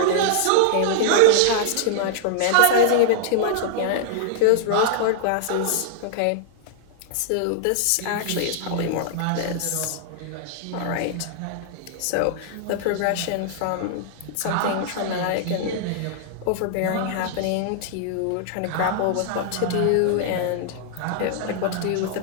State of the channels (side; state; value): both; different; correlation -0.01